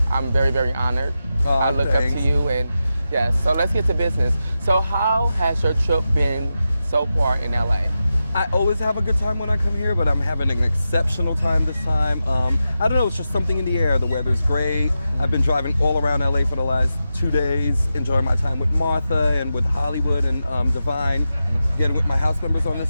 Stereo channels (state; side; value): inverted; both; correlation -0.90